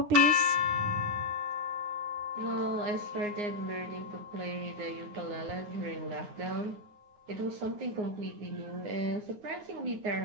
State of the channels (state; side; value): late; left; 9.6 ms